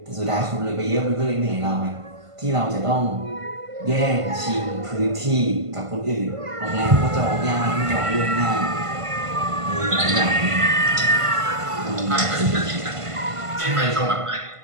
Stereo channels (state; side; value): late; left; 1.5 ms